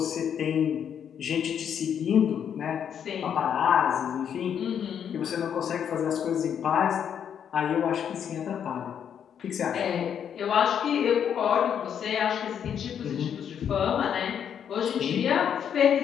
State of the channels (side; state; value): right; quieter; 8.5 dB